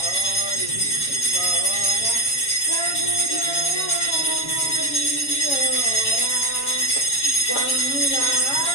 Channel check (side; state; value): right; late; 7.2 ms